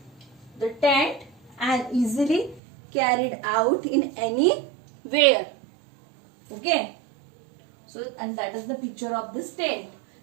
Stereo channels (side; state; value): left; drops out; at 2.6 s